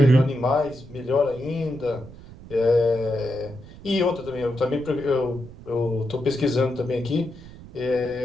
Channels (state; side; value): noise; right; rumble, 17 dB below the sound